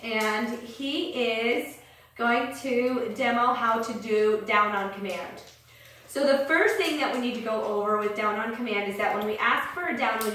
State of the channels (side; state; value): both; identical; correlation 1.00